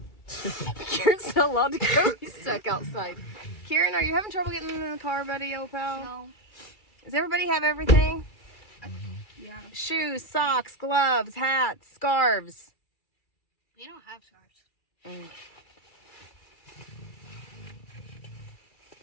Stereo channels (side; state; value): right; late; 2.3 ms